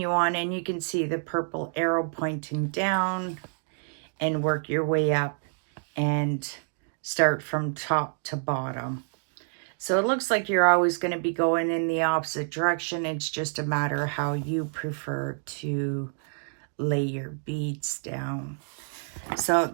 on, and you can see the purple arrow pointing down, and work your way up and start from top to bottom. So it looks like you're always going to be going in the opposite direction. It's just a matter of how you prefer to lay your beads down. So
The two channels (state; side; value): silent; left; digital silence